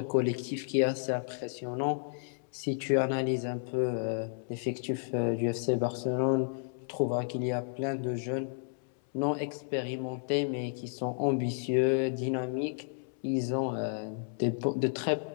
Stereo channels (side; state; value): right; silent; 56 dB below the other